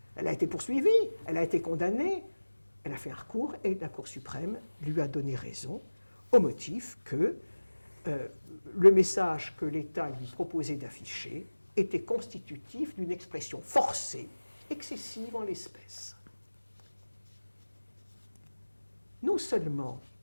Elle a été poursuivie, elle a été condamnée, elle a fait un recours et la Cour suprême lui a donné raison au motif que le message que l'État lui proposait d'afficher était constitutif d'une expression forcée, excessive en l'espèce. Non seulement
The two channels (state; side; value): inverted; both; correlation -1.00